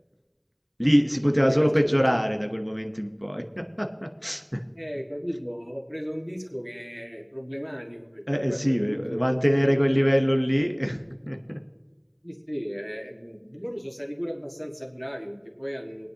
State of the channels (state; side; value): identical; both; correlation 1.00